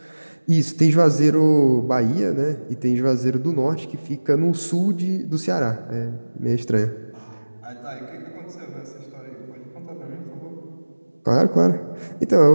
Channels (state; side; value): inverted; both; correlation -1.00